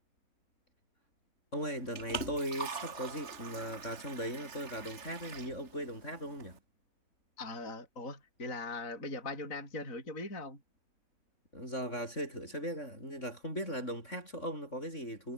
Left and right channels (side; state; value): right; late; 3.4 ms